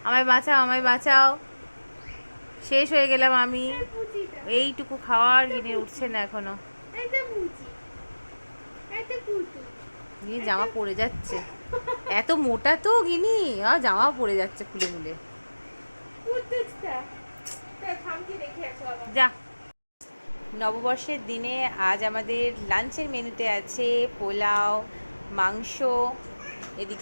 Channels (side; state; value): both; inverted; correlation -1.00